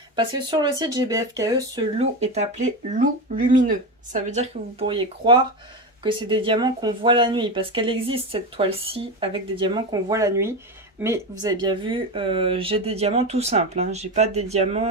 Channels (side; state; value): both; normal; correlation 0.19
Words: Parce que sur le site GBFKE, ce loup est appelé loup lumineux. Ça veut dire que vous pourriez croire que c'est des diamants qu'on voit la nuit. Parce qu'elle existe cette toile-ci avec des diamants qu'on voit la nuit. Mais vous avez bien vu, j'ai des diamants tout simples. Hein. J'ai pas des